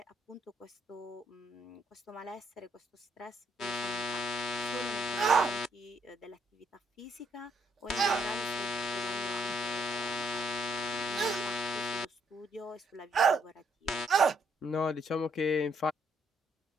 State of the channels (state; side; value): normal; both; correlation 0.71